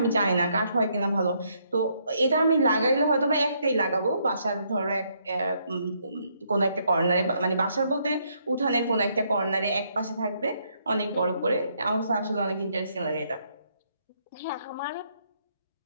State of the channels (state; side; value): inverted; both; correlation -0.73